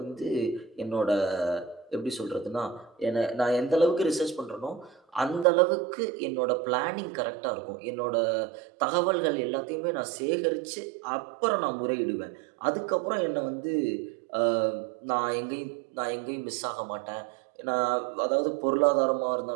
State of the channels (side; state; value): left; drops out; at 5.5 s